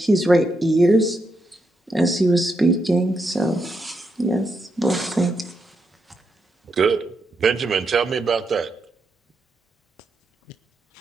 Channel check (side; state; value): both; normal; correlation 0.82